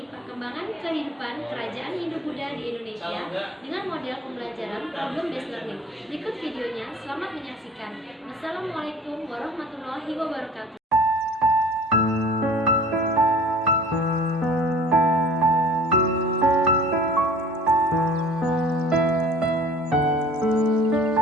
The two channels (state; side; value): normal; both; correlation 0.47